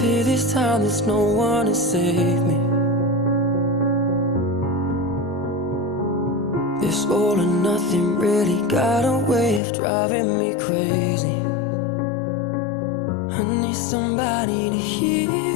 this time there's no one to save me. This all or nothing really got a way of driving me crazy. I need somebody to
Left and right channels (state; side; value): drops out; right; at 9.6 s